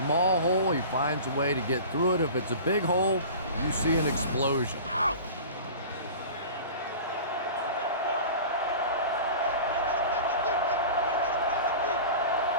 hole, he finds a way to get through it. If it's a big hole, you see an explosion. Out!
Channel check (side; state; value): both; inverted; correlation -0.38